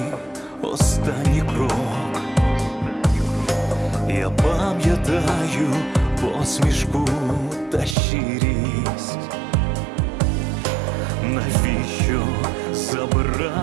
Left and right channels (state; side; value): drops out; left; at 8.0 s